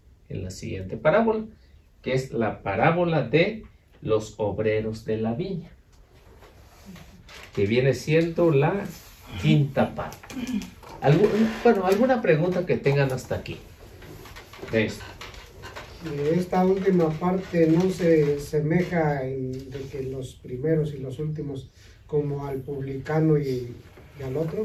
en la siguiente parábola, que es la parábola de los obreros de la viña, que viene siendo la quinta parte. ¿Alguna pregunta que tengan hasta aquí de esto? Esta última parte no se semeja de que los primeros y los últimos, como al publicano y al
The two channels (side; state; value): both; identical; correlation 1.00